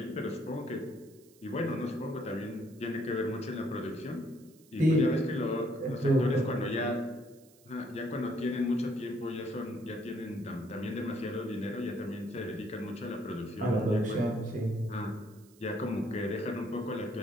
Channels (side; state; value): right; noise; hiss, 27 dB below the sound